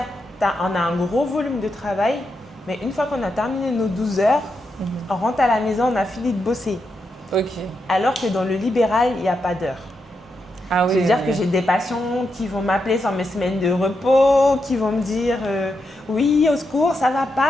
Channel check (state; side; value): normal; both; correlation 0.84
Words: on a un gros volume de travail, mais une fois qu'on a terminé nos 12 heures, on rentre à la maison, on a fini de bosser. Ok. Alors que dans le libéral, il n'y a pas d'heure. Ah oui. C'est-à-dire que j'ai des patients qui vont m'appeler sur mes semaines de repos, qui vont me dire oui, au secours, ça va